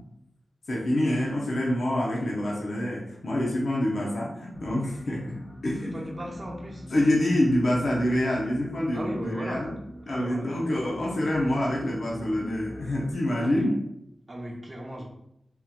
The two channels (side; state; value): both; normal; correlation 0.94